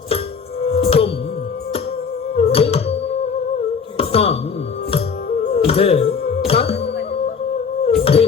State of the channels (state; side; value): quieter; right; 5.9 dB